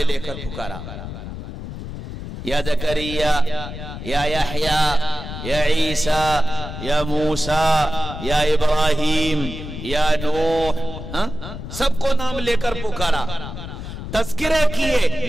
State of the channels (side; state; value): left; noise; rumble, 9 dB below the sound